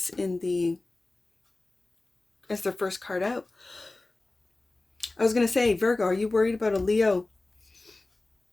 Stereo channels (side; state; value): right; quieter; 3.1 dB